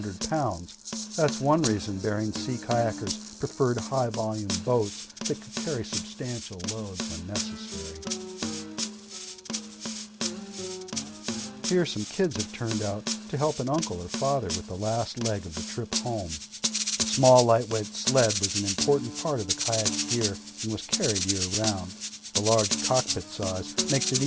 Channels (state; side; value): identical; both; correlation 1.00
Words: pounds. That's one reason Bering Sea kayakers preferred high-volume boats that could carry substantial loads when necessary. Here some kids have turned out to help an uncle or father with the last leg of the trip home. A small lightweight sled was an important part of the kayak's gear and was carried year-round. The large cockpit size makes it